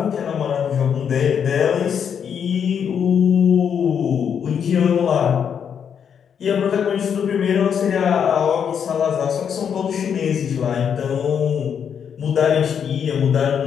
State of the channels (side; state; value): right; quieter; 7.7 dB